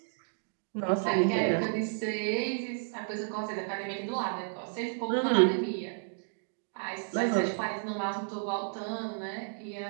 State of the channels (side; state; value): left; silent; digital silence